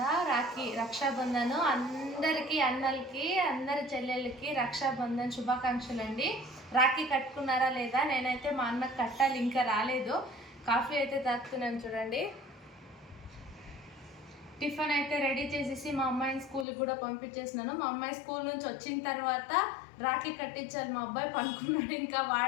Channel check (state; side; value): drops out; right; at 16.7 s